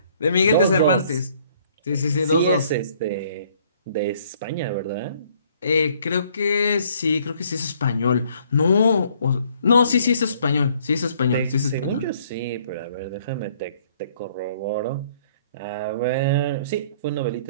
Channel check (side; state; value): both; inverted; correlation -0.62